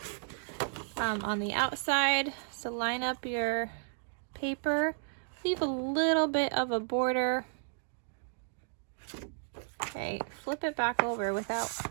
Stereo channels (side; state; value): left; silent; digital silence